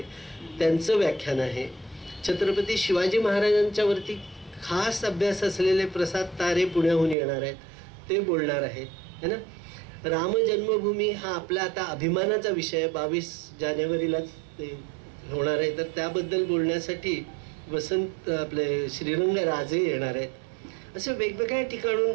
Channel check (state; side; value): drops out; left; at 7.2 s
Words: त्यांचं व्याख्यान आहे. छत्रपती शिवाजी महाराजांच्यावरती खास अभ्यास असलेले प्रसाद तारे पुण्याहून येणार आहेत, ते बोलणार आहेत, है ना. राम जन्मभूमी हा आपला आता अभिमानाचा विषय 22 जानेवारीला होणार आहे, तर त्याबद्दल बोलण्यासाठी वसंत आपले श्रीरंग राजे येणार आहेत. असे वेगवेगळ्या ठिकाणून